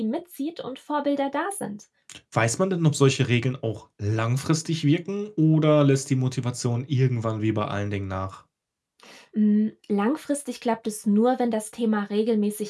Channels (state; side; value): identical; both; correlation 1.00